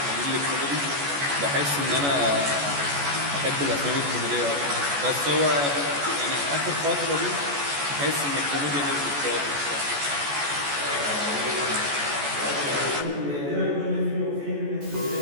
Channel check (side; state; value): left; late; 14 ms